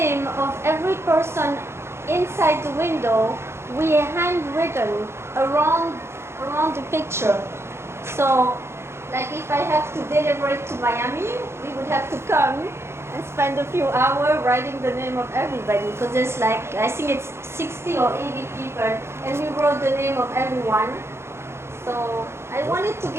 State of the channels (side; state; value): left; late; 0.12 ms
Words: of every person inside the window, we handwritten around the picture. So, like if I have to deliver it to Miami, we would have to come and spend a few hours writing the name of everybody because there's like, I think it's 60 or 80 people and we wrote the name of everyone. So I wanted to